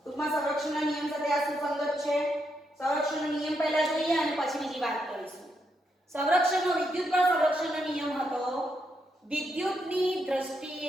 ટૂંકમાં સંરક્ષણના નિયમ સાથે આ સુસંગત છે. સંરક્ષણનો નિયમ પહેલા જોઈએ અને પછી બીજી વાત કરીશું. સંરક્ષણનો વિદ્યુત બળ સંરક્ષણનો નિયમ હતો વિદ્યુતની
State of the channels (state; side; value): normal; both; correlation 0.80